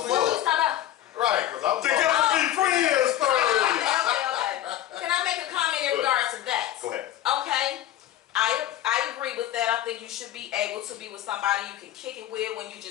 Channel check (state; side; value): quieter; right; 12.6 dB